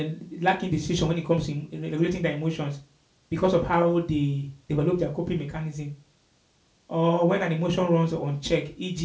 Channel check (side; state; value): both; identical; correlation 1.00